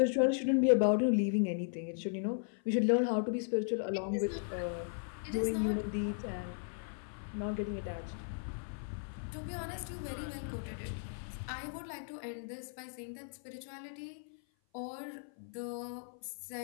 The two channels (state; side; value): silent; right; 53 dB below the other